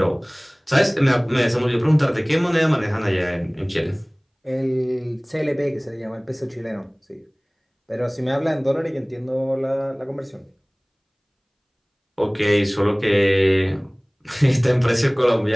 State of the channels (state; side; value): identical; both; correlation 1.00